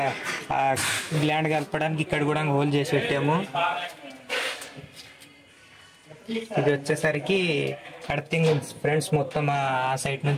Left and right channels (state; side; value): identical; both; correlation 1.00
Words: గ్లాండ్ కలపడానికి ఇక్కడ కూడా హోల్ చేసి పెట్టాము. ఇది వచ్చేసరికి అర్థింగ్ ఫ్రెండ్స్. మొత్తం ఆ సైడ్